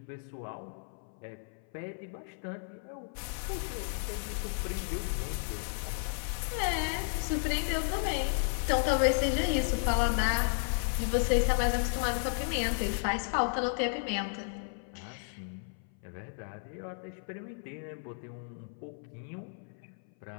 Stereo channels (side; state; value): right; silent; 55 dB below the other